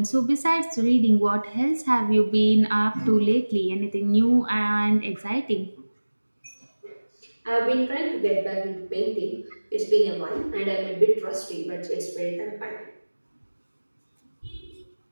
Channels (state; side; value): inverted; both; correlation -1.00